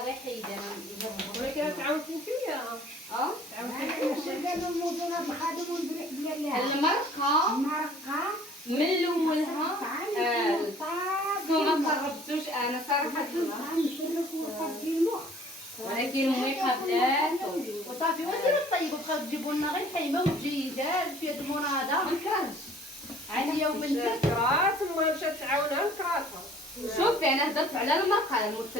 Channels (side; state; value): both; normal; correlation 0.53